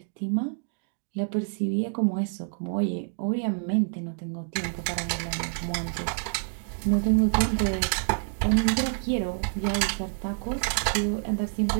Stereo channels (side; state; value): left; silent; digital silence